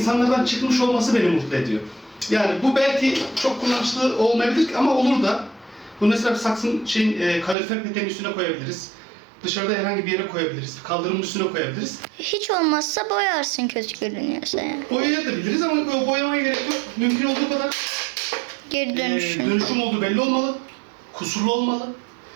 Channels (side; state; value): left; drops out; at 7.6 s